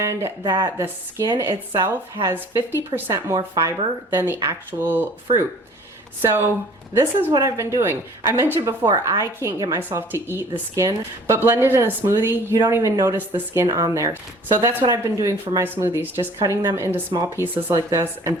that the skin itself has 50% more fiber than the actual fruit. So this is what I've been doing. I mentioned before, I can't get myself to eat the skin, but blended in a smoothie, you don't even notice the skin on there. So that's what I've been doing for my smoothies, just cutting them into small pieces like this and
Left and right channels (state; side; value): normal; both; correlation 0.50